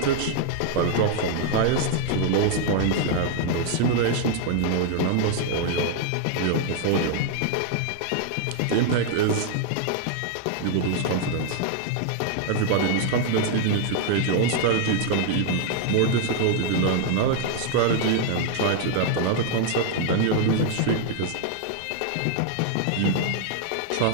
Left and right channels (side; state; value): both; different; correlation 0.00